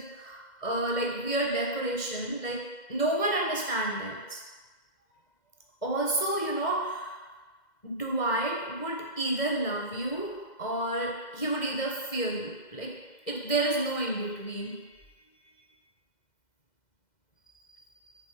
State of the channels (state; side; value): late; right; 2.0 ms